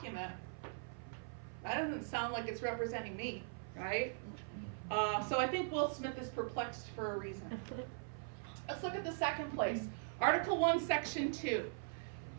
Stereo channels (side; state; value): left; silent; 50 dB below the other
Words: that doesn't sound like it's representing me, right? So I think Will Smith is perplexed for a reason. Let's look at the second place. Article 1, Section 2.